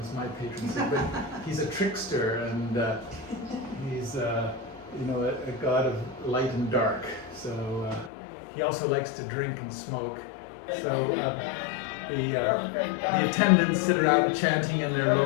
my patron saint. But he's a trickster, and he's a god of light and dark. So he also likes to drink and smoke. So the attendants sit around chanting in their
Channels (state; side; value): drops out; right; at 8.1 s